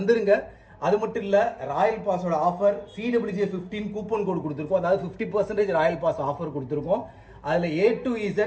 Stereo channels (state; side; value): identical; both; correlation 1.00